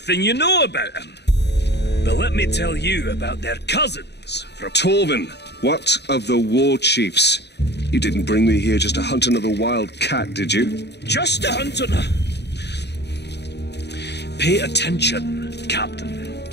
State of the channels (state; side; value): late; right; 0.49 ms